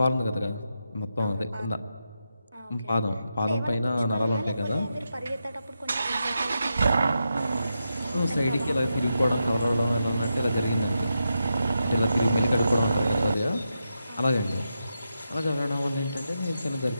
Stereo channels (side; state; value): both; inverted; correlation -0.87